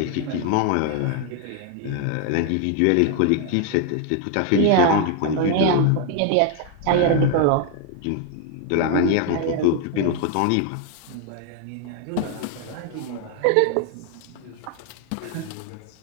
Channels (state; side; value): different; both; correlation 0.01